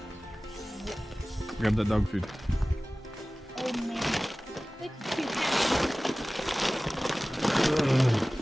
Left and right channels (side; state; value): both; normal; correlation 0.98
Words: Grab that dog food. Old man. It's cute.